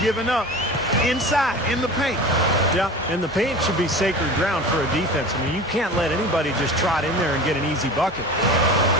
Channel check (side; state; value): both; normal; correlation 0.35